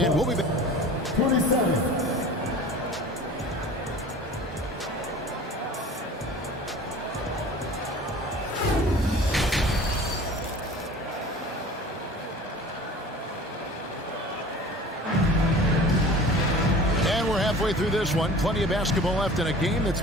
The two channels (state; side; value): normal; both; correlation 0.42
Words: we'll be back. 27. Halfway through this one, plenty of basketball left in a game that's